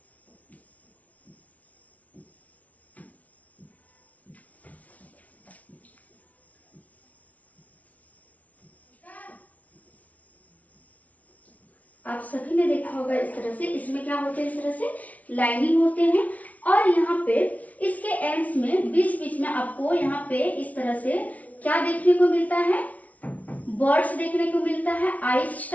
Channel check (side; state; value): right; late; 0.070 ms